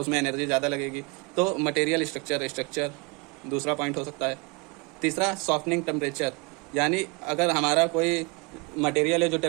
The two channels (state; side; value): quieter; left; 28.8 dB